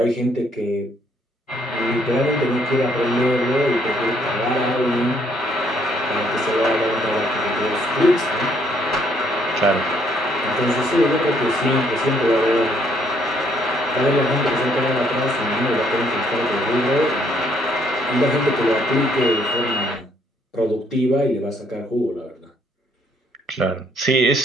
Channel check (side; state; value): both; normal; correlation 0.68